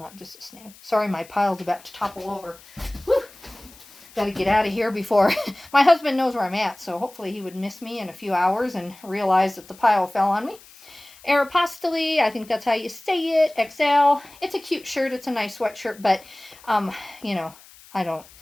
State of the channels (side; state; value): left; noise; hiss, 23 dB below the sound